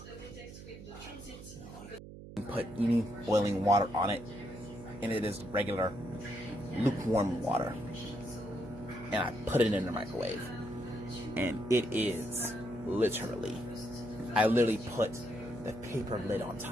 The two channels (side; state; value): right; noise; hum, 14 dB below the sound